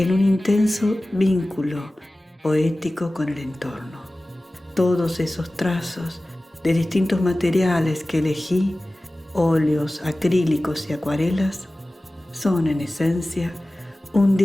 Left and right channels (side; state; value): both; normal; correlation 0.97